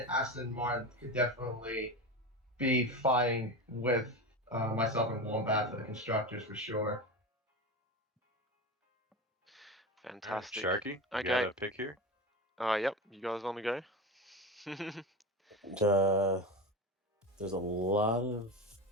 Aston Martin could definitely be fighting with myself and Wombat for the constructors for sure. Fantastic. Right, Sharky, you okay. got a pick here? Yep. You guys want to go? There's a lot of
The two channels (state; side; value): normal; both; correlation 0.24